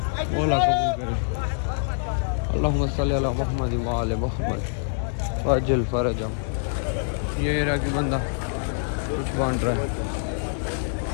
मौला कबूल करे। अल्लाहुम्मा सल्ली अला मुहम्मद व आले मुहम्मद वअज्जल फरजह। ये इराकी बंदा कुछ बांट रहा है,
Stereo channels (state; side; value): silent; right; digital silence